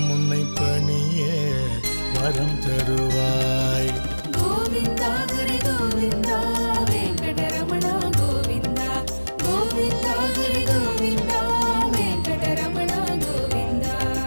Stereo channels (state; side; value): inverted; both; correlation -1.00